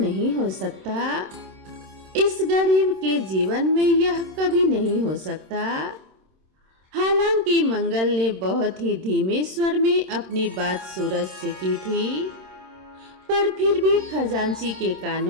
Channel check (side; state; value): left; late; 26 ms